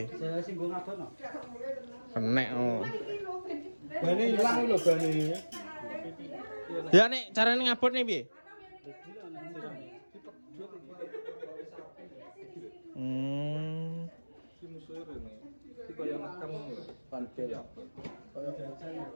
Saya sing go ngadono. Enak oh. Bane ilang lho bane. Ya nek carane ngabotne piye? Ki musuhe rene. Ki kaya nekam ngono. Panbel. Kaya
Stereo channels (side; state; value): both; inverted; correlation -1.00